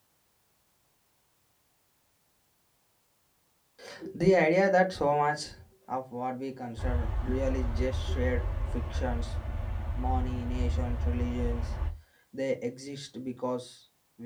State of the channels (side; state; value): both; identical; correlation 1.00